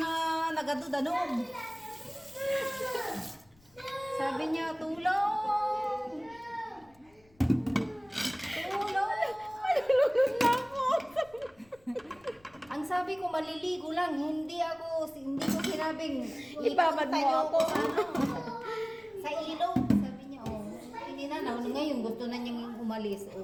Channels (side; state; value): left; noise; rumble, 30 dB below the sound